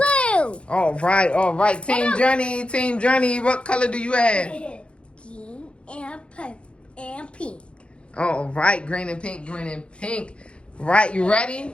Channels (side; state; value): right; late; 0.058 ms